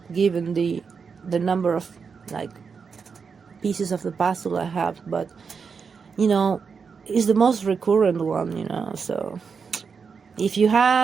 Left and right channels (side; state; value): left; quieter; 5.7 dB